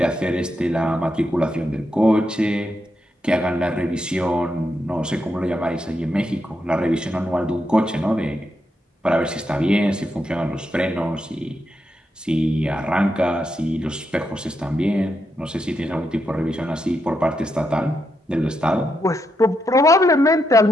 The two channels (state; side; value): normal; both; correlation 0.83